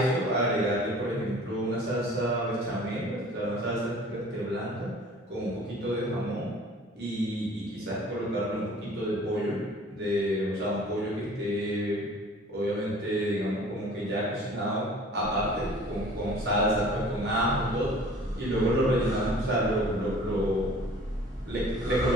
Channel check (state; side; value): normal; both; correlation 0.48